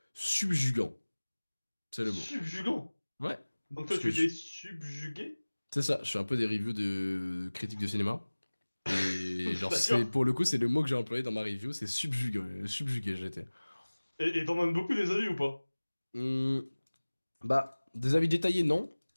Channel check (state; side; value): inverted; both; correlation -1.00